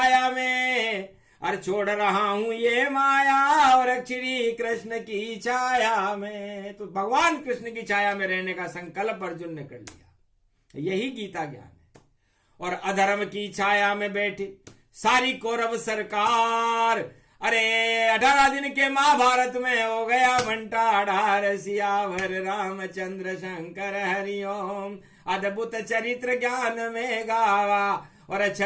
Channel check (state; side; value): identical; both; correlation 1.00